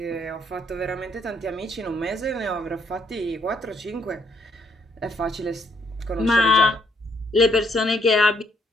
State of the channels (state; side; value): normal; both; correlation 0.70